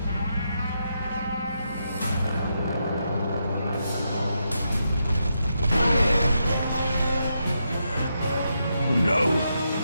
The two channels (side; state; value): both; inverted; correlation -0.83